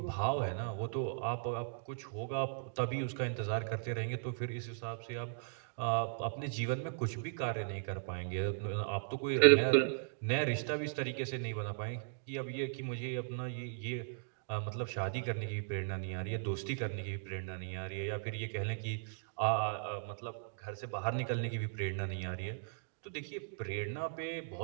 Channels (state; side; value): silent; left; digital silence